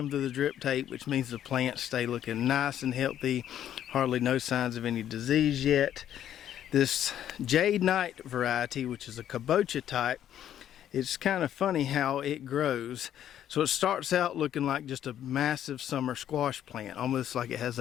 through the drip tape, which means the plants stay looking nice and healthy. Hardly no signs of any disease yet. This Jade Knight variety, which is a kabocha type, it's kind of funny how it grows. So it starts out looking like just a massive summer squash plant, almost like it has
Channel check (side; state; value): right; quieter; 10.7 dB